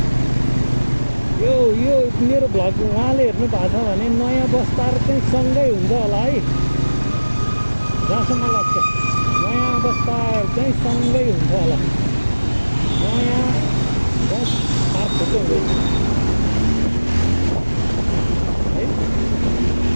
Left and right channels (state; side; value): inverted; both; correlation -1.00